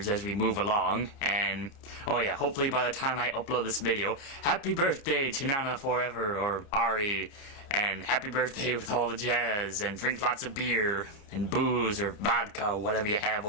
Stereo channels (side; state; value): right; late; 29 ms